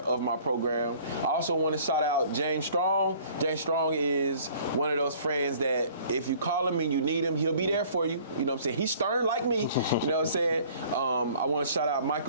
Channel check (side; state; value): both; inverted; correlation -0.53